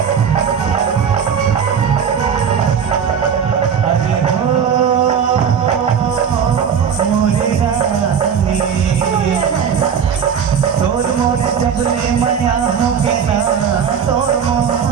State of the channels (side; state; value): left; quieter; 7.4 dB